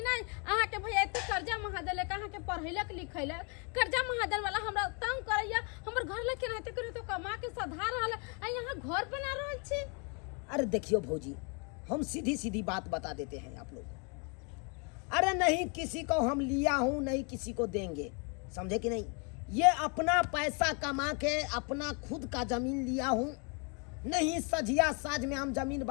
नहीं? अहाँ के भैया एते कर्जा महा देलक, अहाँ के पढ़ैलक लिखैलक, कर्जा महा देल वाला हमरा तंग करैया, हमर घर ले केनाते करे तो कमा के सधा रहल आ यहाँ घर बना रहल छी। अरे देखियो भौजी, हम सीधी सीधी बात बता देते हैं आप लोग। अरे नहीं किसी को हम लिया हूं, नहीं किसी को देंगे, समझे कि नहीं? ये अपना पैसा कमा के अपना खुद का जमीन लिया हूं, नहीं सजिया साज में हम जमीन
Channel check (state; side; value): quieter; right; 35.3 dB